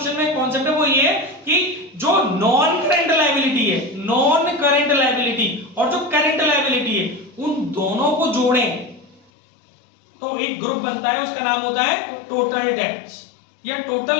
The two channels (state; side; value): drops out; right; at 9.2 s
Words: में कॉन्सेप्ट है वो ये है कि जो नॉन करंट लायबिलिटी है, नॉन करंट लायबिलिटी और जो करंट लायबिलिटी है, उन दोनों को जोड़ें तो एक ग्रुप बनता है, उसका नाम होता है टोटल डेट्स या